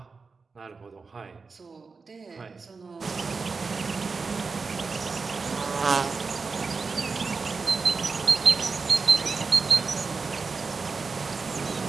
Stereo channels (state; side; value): quieter; left; 4.5 dB